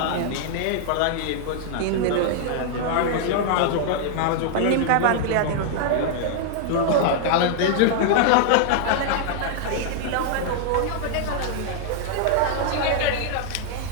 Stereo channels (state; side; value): different; both; correlation 0.00